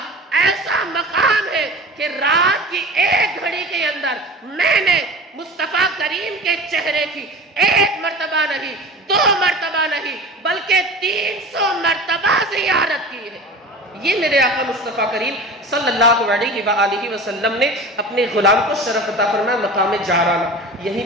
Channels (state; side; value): normal; both; correlation 0.35